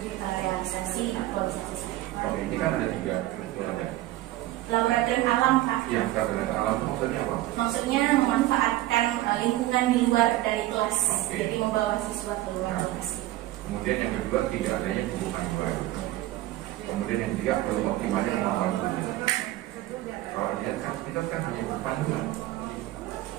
realisasi aktualisasi saya. Oke, ini kan ada 3 laboratorium alam Pak. Yang laboratorium alam maksudnya apa? Maksudnya memanfaatkan lingkungan di luar dari kelas, Oke. jadi membawa siswa ke luar kelas. Kemudian yang kedua, tidak adanya hubungan baru. Kemudian yang ketiga, perlu optimalnya kemampuan guru. Kalau lihat kan kita kan hanya panduan.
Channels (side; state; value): left; quieter; 16.1 dB